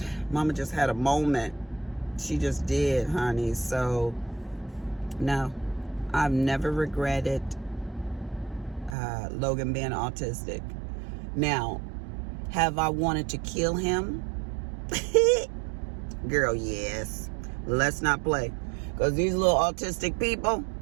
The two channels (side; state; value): left; drops out; at 9.0 s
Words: had a moment. She just did, honey. So, no, I've never regretted Logan being autistic. Now, have I wanted to kill him? Girl, yes. Let's not play. Because these little autistic people,